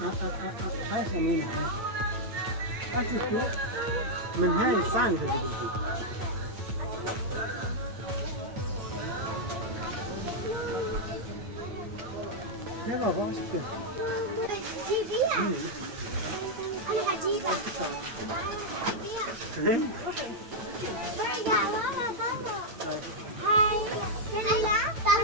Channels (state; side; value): late; left; 9.1 ms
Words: هاي سمينة أشوفوا من هاي الصاني اللي بدي يا بابا وش كده؟ جيبيها أنا هجيبها برجع ورا بابا هاي